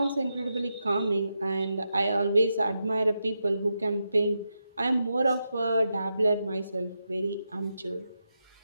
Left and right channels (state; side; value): inverted; both; correlation -0.86